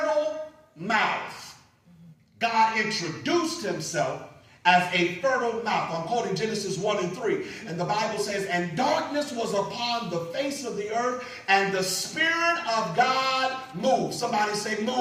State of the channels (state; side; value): identical; both; correlation 1.00